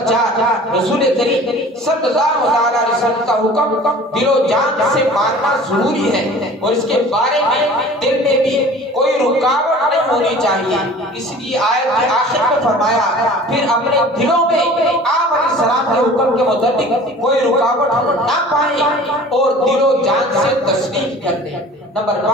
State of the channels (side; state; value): both; normal; correlation 0.44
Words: 4، رسول کریم صلی اللہ علیہ وسلم کا حکم دل و جان سے ماننا ضروری ہے اور اس کے بارے میں دل میں بھی کوئی رکاوٹ نہیں ہونی چاہیے۔ اس لیے آیت کے آخر میں فرمایا، پھر اپنے دلوں میں آپ علیہ السلام کے حکم کے متعلق کوئی رکاوٹ نہ پائیں اور دل و جان سے تسلیم کر دیں۔ نمبر